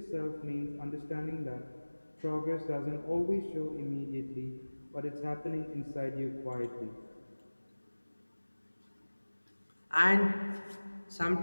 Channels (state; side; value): inverted; both; correlation -1.00